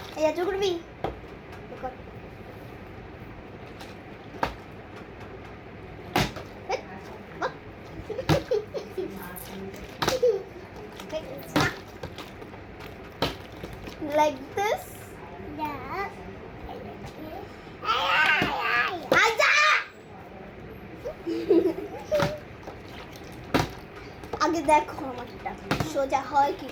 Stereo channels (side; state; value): both; identical; correlation 1.00